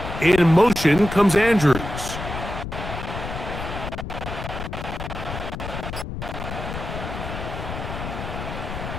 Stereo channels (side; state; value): left; noise; rumble, 7 dB below the sound